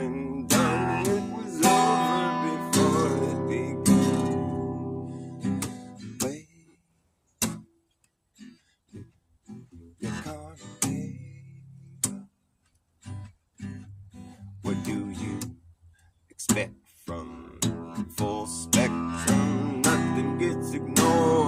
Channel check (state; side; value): identical; both; correlation 1.00